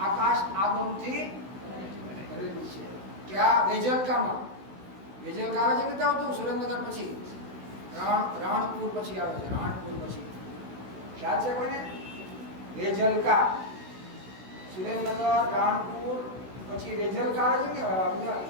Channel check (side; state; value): left; late; 16 ms